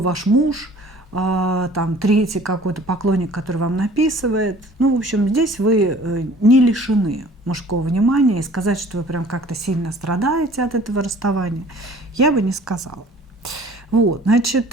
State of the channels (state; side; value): normal; both; correlation 0.50